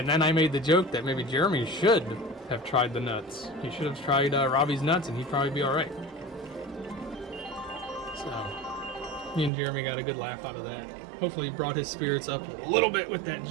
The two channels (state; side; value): drops out; left; at 9.5 s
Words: then I made the joke that maybe Jeremy should have tried the nuts. He should have tried Robbie's nuts, and he'd probably be all right. So me and Jeremy got a good laugh out of that. Hopefully brought his spirits up a little bit with that